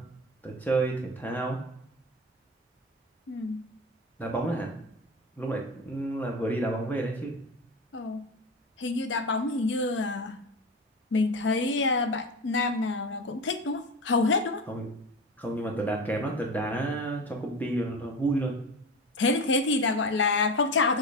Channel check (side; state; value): both; normal; correlation 0.27